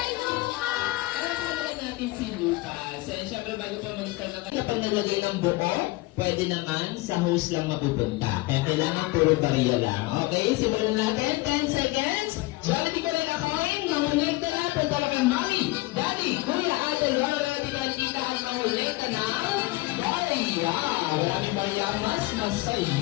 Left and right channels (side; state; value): right; quieter; 20.5 dB